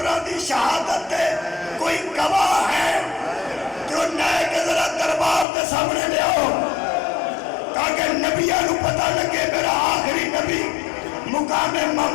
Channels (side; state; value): right; drops out; at 5.5 s